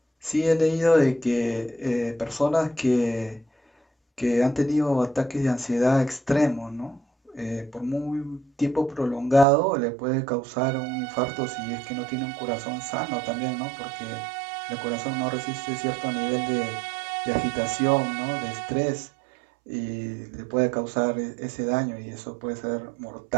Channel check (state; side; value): drops out; left; at 9.5 s